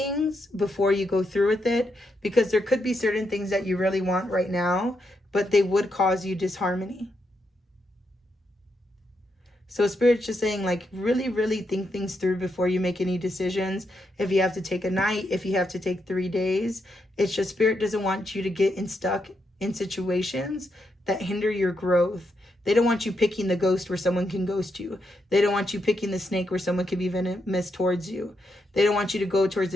before you go through with it, because there could be certain things that you really want right now, but they would cause you disharmony. So Spirit's just saying like, really, really think things through before you make any decisions. If you have to take a night, if you have to take 3 days, it's just Spirit doesn't want you to get stuck in situations that hinder your growth. They don't want you picking the ghost where someone can ghost you. They don't want you picking the snake where someone can be venomous towards you. They don't want you to go towards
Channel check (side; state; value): both; normal; correlation 0.81